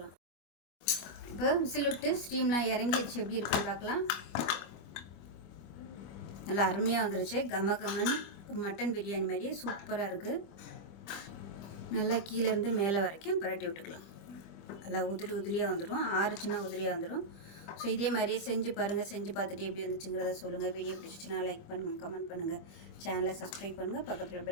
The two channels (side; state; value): right; late; 25 ms